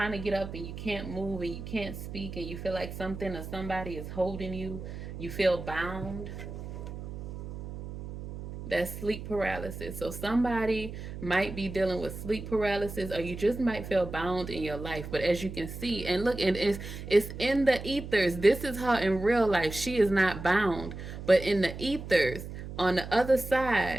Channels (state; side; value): noise; right; hum, 9 dB below the sound